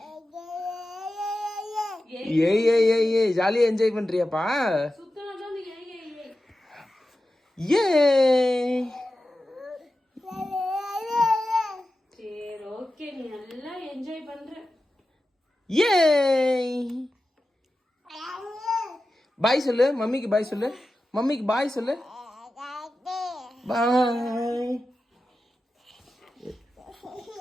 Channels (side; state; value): both; normal; correlation 0.93